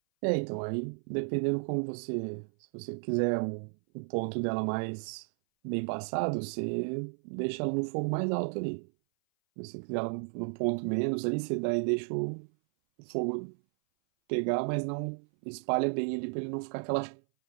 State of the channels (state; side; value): silent; left; 56 dB below the other